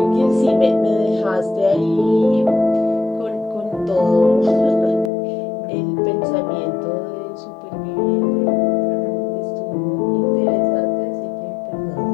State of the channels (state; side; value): drops out; right; at 5.1 s